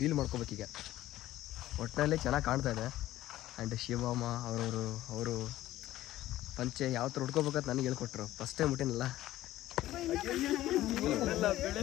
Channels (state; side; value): quieter; right; 14.9 dB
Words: ರೀಲ್ ಮಾಡ್ಕೋಬೇಕೀಗ. ಒಟ್ಟಿನಲ್ಲಿ ಚೆನ್ನಾಗಿ ಕಾಣ್ತಾ ಇದೆ. ಆ್ಯಂಡ್ ಶಿವಮ್ಮ ಅವರು ಪಂಚೆ ಯಾವ ಥರ ಉಟ್ಕೋಬೇಕಂತ ನನಗೆ ಹೇಳ್ಕೊಟ್ರು. ಫಸ್ಟ್ ಟೈಮ್ ಹುಟ್ಟಿನಲ್ಲ.